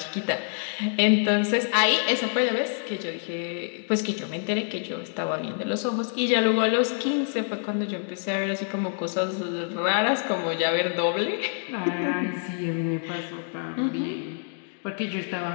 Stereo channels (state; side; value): silent; right; 60 dB below the other